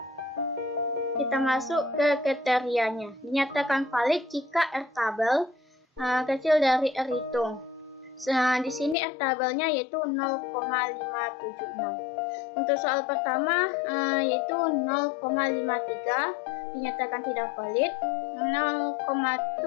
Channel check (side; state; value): right; drops out; at 9.0 s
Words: Kita masuk ke kriterianya. Dinyatakan valid jika R tabel kecil dari R hitung. Di sini R tabelnya yaitu 0,576. Untuk soal pertama yaitu 0,53 dinyatakan tidak valid, 0,7